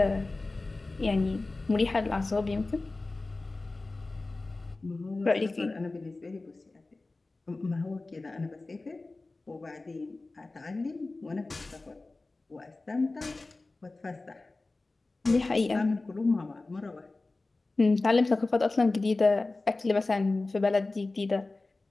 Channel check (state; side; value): quieter; right; 3.3 dB